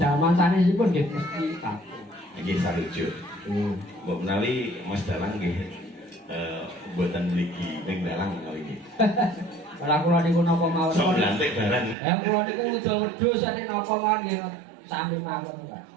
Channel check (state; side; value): drops out; left; at 12.0 s